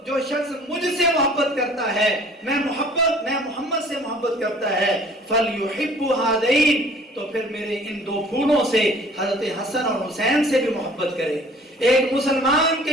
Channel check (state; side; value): normal; both; correlation 0.52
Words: جو شخص مجھ سے محبت کرتا ہے، میں محمد سے محبت کرتا ہے، فلیحب ہذین، تو پھر میرے ان دو پھولوں سے حضرت حسن اور حسین سے بھی محبت کرے۔ ایک مسلمان کے